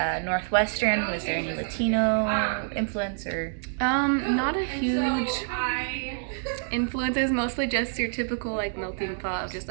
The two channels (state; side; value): silent; left; digital silence